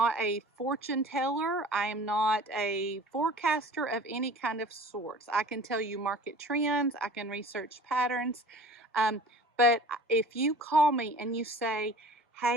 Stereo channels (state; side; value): normal; both; correlation 0.43